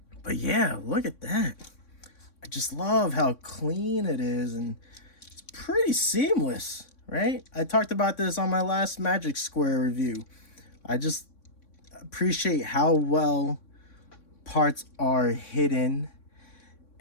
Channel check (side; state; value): right; late; 3.6 ms